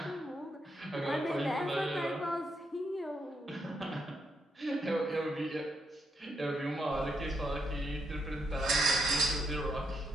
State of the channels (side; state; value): both; normal; correlation 0.79